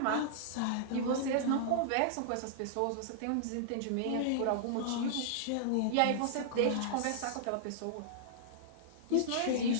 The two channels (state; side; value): different; both; correlation -0.02